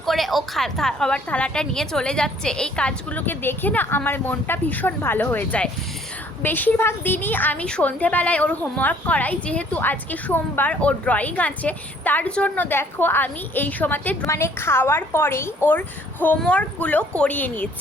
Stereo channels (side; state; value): both; normal; correlation 0.59